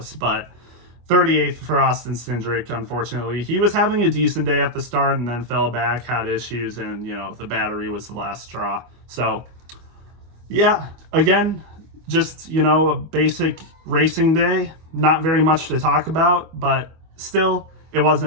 But 38th for Austin Cindric, unfortunately. He was having a decent day at the start and then fell back, had issues, and, the battery was the last straw. So, yeah, again, just, a basic racing day. Not very much to talk about, but still, it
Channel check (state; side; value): late; left; 25 ms